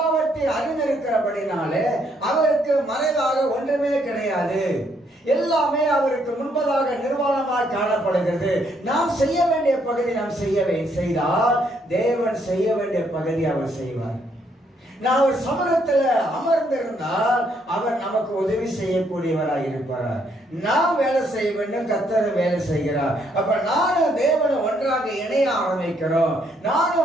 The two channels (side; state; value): both; normal; correlation 0.71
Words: அறிந்திருக்கிறபடினாலே அவருக்கு மறைவாக ஒன்றுமே கிடையாது. எல்லாமே அவருக்கு முன்பதாக நிர்வாணமாக காணப்படுகிறது. நாம் செய்ய வேண்டிய பகுதி நாம் செய்தால் தேவன் செய்ய வேண்டிய பகுதி அவர் செய்வார். நான் ஒரு சமூகத்தில் அமர்ந்திருந்தால் அவர் நமக்கு உதவி செய்யக்கூடியவராக இருப்பார். நாம் வேலை செய்ய வேண்டும், கர்த்தர் வேலை செய்கிறார். அப்ப நானும் தேவனை ஒன்றாக இணைய ஆரம்பிக்கிறோம்.